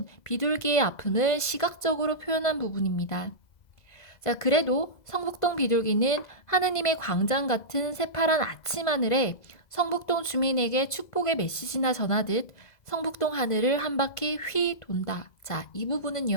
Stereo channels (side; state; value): right; late; 2.0 ms